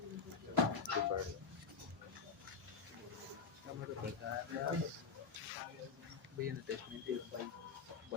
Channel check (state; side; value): quieter; right; 5.2 dB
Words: भैया ने टेस्ट में दिया